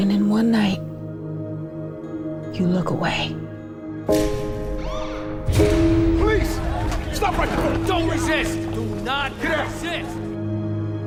then one night, you look away. Police! Stop right there! Don't resist! Do not resist!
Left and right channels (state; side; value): identical; both; correlation 1.00